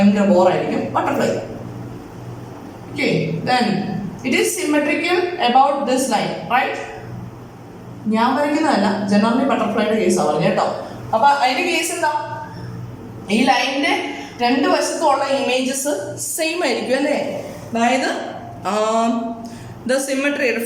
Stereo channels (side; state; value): both; identical; correlation 1.00